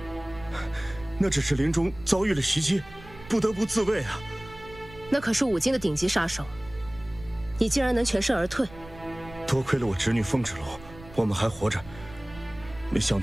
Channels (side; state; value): right; noise; rumble, 19 dB below the sound